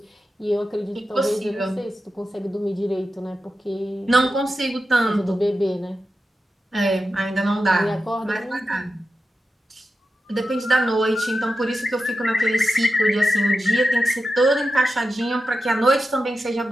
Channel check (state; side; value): normal; both; correlation 0.90